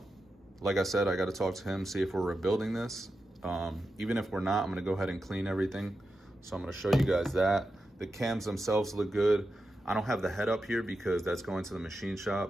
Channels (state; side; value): normal; both; correlation 0.89